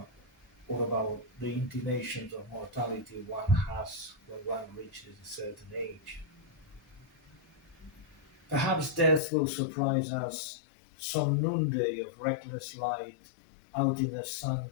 or about the intimations of mortality one has when one reaches a certain age. Perhaps death will surprise us some noonday of reckless light out in the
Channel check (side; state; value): right; drops out; at 9.2 s